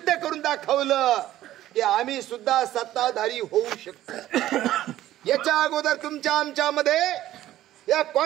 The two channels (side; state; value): left; quieter; 13.9 dB